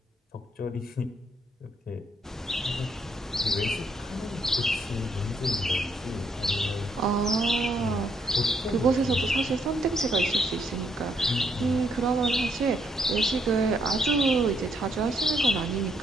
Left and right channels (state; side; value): normal; both; correlation 0.73